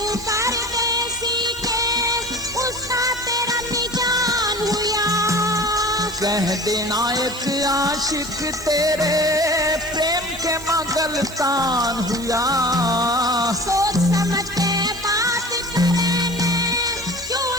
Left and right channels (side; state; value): right; noise; hiss, 18 dB below the sound